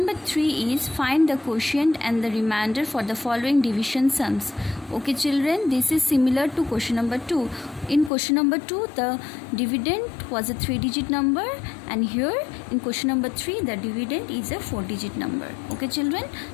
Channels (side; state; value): right; drops out; at 8.1 s